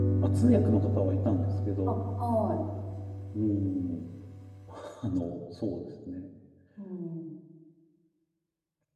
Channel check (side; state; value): both; identical; correlation 1.00